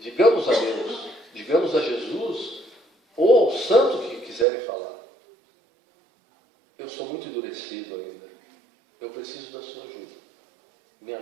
Digamos a Deus, digamos a Jesus, ou ao santo que quiserem falar: eu sou muito endurecido ainda. Eu preciso da sua ajuda. Me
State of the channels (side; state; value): left; drops out; at 4.5 s